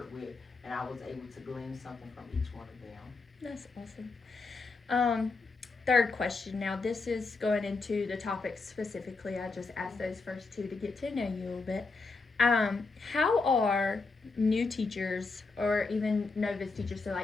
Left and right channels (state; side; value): quieter; right; 4.0 dB